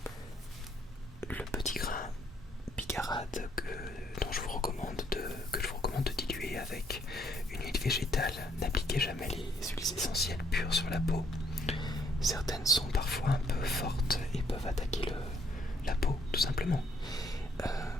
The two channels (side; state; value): both; normal; correlation 0.68